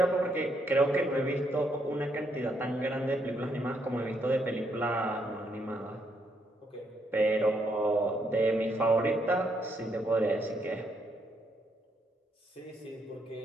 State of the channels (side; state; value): both; normal; correlation 0.75